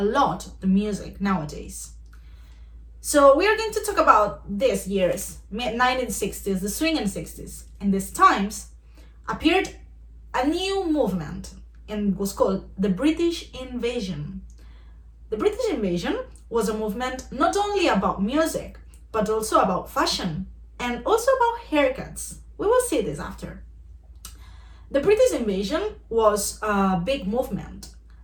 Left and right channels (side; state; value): both; identical; correlation 1.00